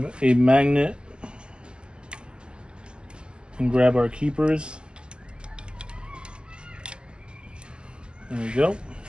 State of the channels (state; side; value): late; left; 0.049 ms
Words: a magnet and grab our keepers. There we go.